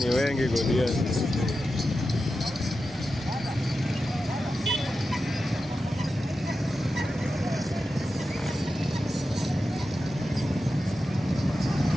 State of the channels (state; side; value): normal; both; correlation 0.91